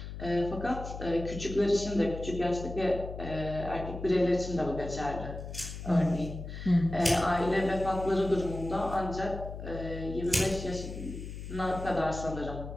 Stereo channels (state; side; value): noise; left; hum, 9 dB below the sound